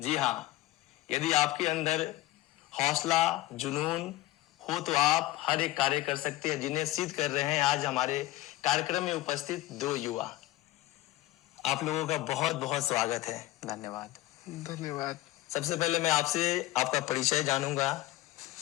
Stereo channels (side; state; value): right; quieter; 16.8 dB